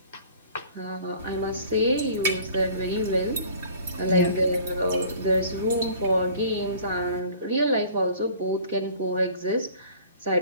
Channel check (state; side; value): inverted; both; correlation -0.48